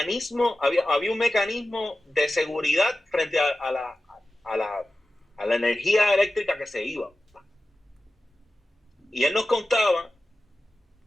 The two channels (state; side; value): normal; both; correlation 0.94